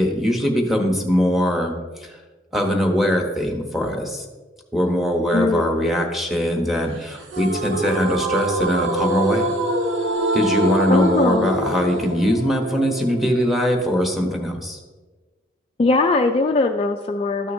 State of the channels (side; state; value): both; normal; correlation 0.61